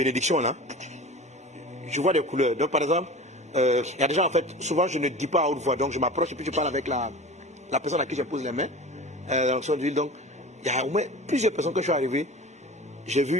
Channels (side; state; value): both; normal; correlation 0.36